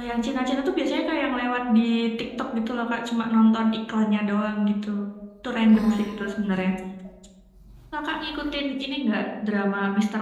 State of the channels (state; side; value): identical; both; correlation 1.00